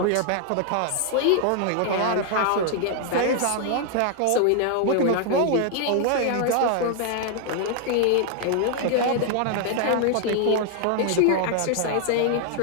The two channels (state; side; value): different; both; correlation 0.00